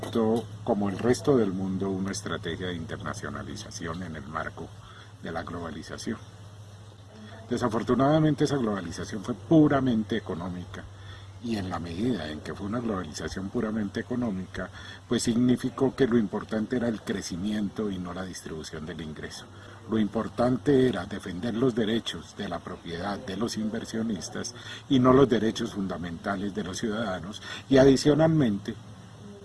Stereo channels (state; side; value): identical; both; correlation 1.00